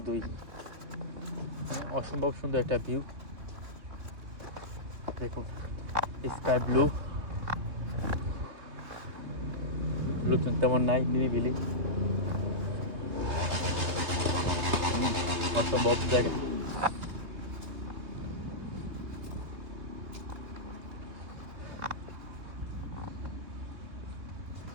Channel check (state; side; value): late; left; 3.0 ms